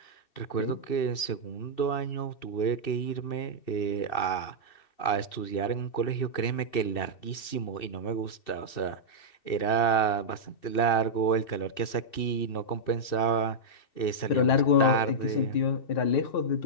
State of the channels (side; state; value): right; late; 2.7 ms